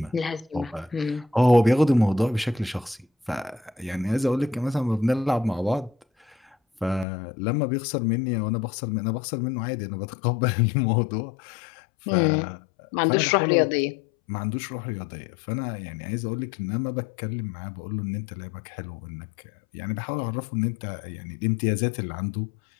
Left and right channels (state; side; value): drops out; right; at 7.1 s